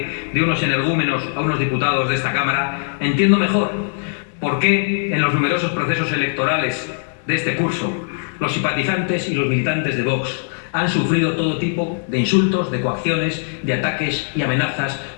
de unos energúmenos a unos diputados de esta Cámara, entiendo mejor por qué en los numerosos procesos electorales de este curso los simpatizantes y los militantes de Vox han sufrido todo tipo de insultos, de coacciones, de ataques y amenazas,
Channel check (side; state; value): right; silent; digital silence